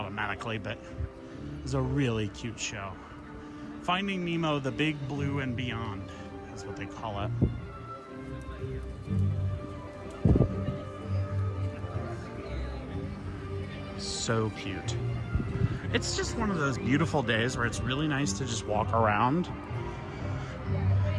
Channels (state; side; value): identical; both; correlation 1.00